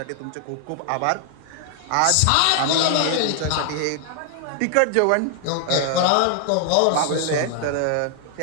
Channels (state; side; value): different; both; correlation 0.00